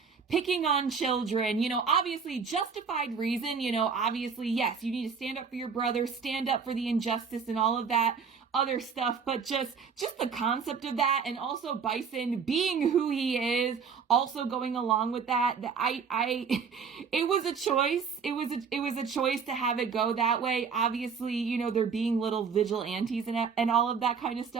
picking on children, you know, obviously justified reason, you know, obviously, yes, you need to stand up for your brother, stand up for the injustice and all of that other stuff, but just the concept of that, and also Bison being who he is, also going along with that, it was a choice. It was a choice to have it go that way. Obviously, you know, they're being little vigilantes and all of that kind of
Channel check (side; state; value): left; quieter; 6.0 dB